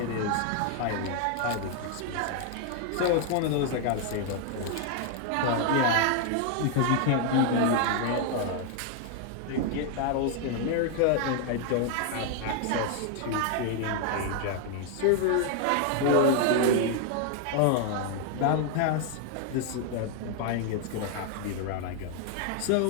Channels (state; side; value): different; both; correlation 0.00